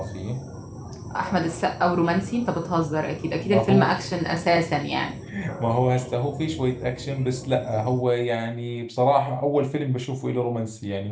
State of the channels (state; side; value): identical; both; correlation 1.00